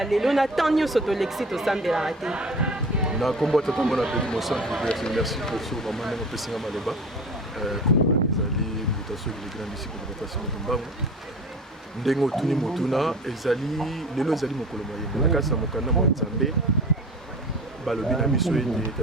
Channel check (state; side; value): normal; both; correlation 0.38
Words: lelo na temps nyonso tolekisi tosambelaka te na kombo tata mona peli mosantu merci pour so maman ndenge opesinga maloba kombo ezali mutation de grande ici pour rotation de mbango ndenge otuni motuna ezali lelo ezali mokolo moyembe na kasi na mokanda mwa nzambe balobi na biso ete